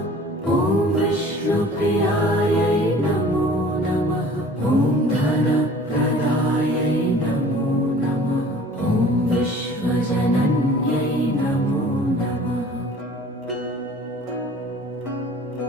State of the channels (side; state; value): both; normal; correlation 0.47